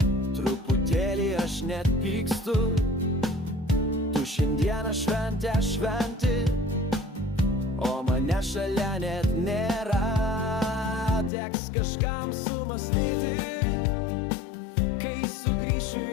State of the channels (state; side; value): drops out; right; at 11.3 s